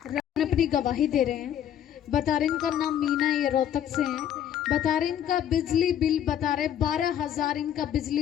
अपनी गवाही दे रहे हैं। बता रहे इनका नाम मीना, ये रोहतक से हैं। बता रहे इनका बिजली बिल, बता रहे 12,000 इनका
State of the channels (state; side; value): quieter; right; 10.1 dB